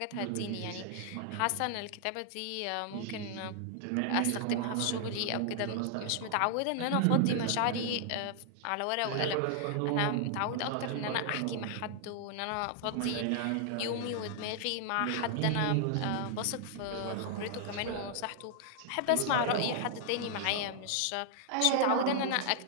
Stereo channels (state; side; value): different; both; correlation -0.01